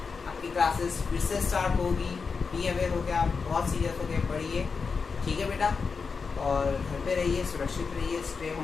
आपकी क्लासेस फिर से स्टार्ट होगी, बी अवेयर होकर आप बहुत सीरियस होकर पढ़िए, ठीक है बेटा, और घर पे रहिए, सुरक्षित रहिए, स्टे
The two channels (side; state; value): right; quieter; 5.1 dB